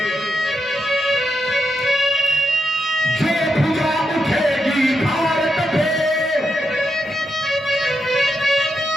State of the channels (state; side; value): normal; both; correlation 0.84